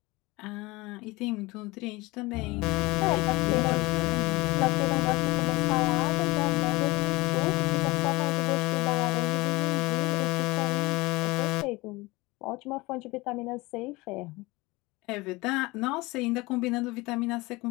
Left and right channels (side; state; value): right; quieter; 22.5 dB